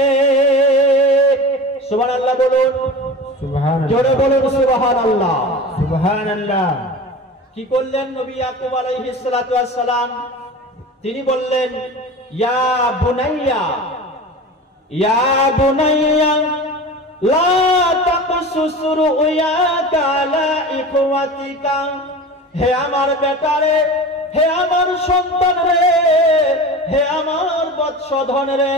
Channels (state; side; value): normal; both; correlation 0.33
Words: সুবহানাল্লাহ বলুন, সুবহানাল্লাহ, জোরে বলুন সুবহানাল্লাহ, সুবহানাল্লাহ। কি করলেন নবী ইয়াকুব আলাইহিস সালাতু ওয়াস সালাম? তিনি বললেন, ইয়া বুনাইয়া, ইয়া বুনাইয়া লা তাকসুস রুয়াকা আলা ইখওয়াতিকা, হে আমার বেটারে, হে আমার সন্তান রে, হে আমার বৎসধন রে,